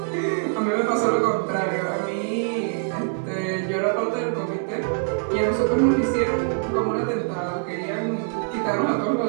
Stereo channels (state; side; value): silent; left; digital silence